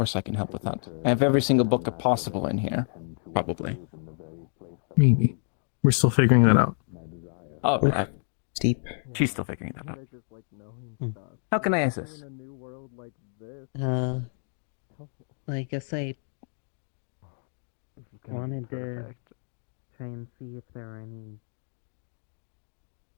I can help with that. I have every single book possible in here. Probably. Maybe. We're still figuring that out. Oh, Oof. Steep. she's still figuring that out. How can I assist? I guess I wanted to try and see if there are any,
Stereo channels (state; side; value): silent; right; 59 dB below the other